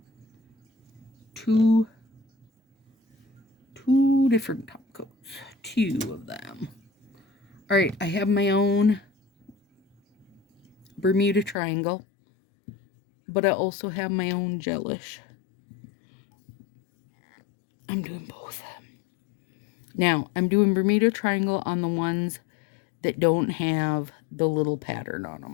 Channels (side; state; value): right; drops out; at 11.6 s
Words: two different top coats, 2 of them. All right, I have my own Bermuda Triangle, but I also have my own gelish. I'm doing both. Now, I'm doing Bermuda Triangle on the ones that don't have the little pattern on